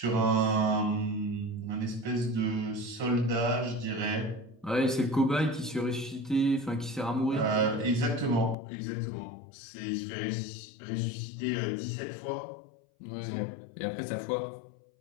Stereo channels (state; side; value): drops out; right; at 8.6 s